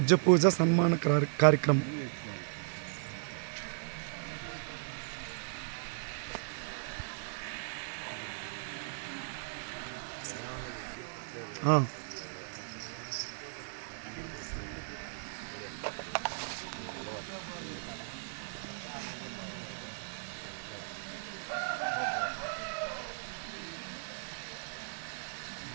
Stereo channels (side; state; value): left; silent; digital silence